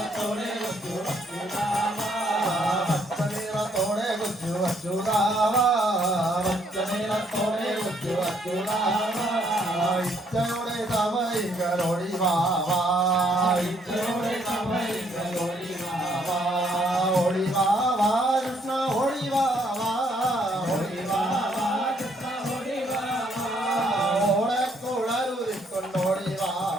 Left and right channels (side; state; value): both; normal; correlation 0.68